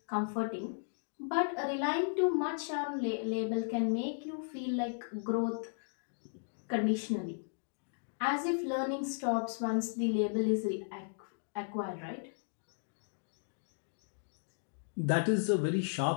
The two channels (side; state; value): right; silent; digital silence